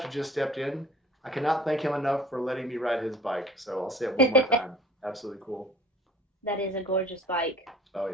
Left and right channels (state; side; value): normal; both; correlation 0.47